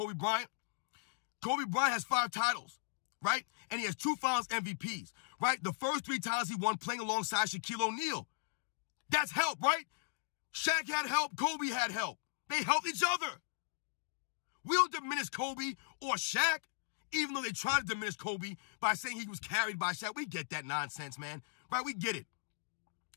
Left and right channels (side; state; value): right; silent; digital silence